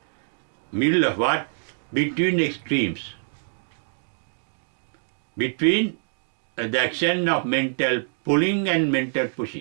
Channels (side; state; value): left; silent; digital silence